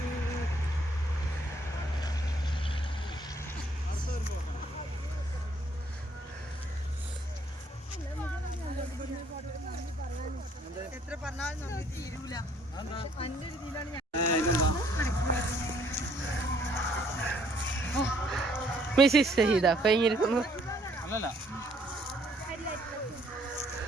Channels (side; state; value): both; normal; correlation 0.65